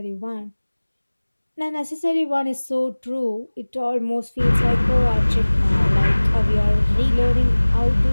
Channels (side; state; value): both; inverted; correlation -1.00